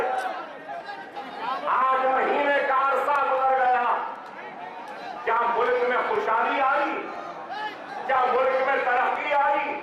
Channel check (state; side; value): identical; both; correlation 1.00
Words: आज महीने का अरसा गुजर गया, क्या मुल्क में खुशहाली आई? क्या मुल्क में तरक्की आई?